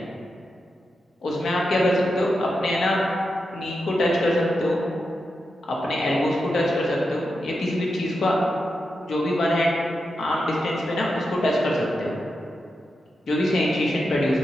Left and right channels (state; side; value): normal; both; correlation 0.88